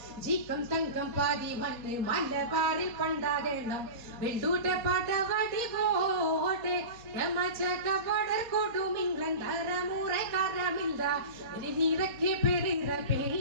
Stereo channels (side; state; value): left; late; 4.2 ms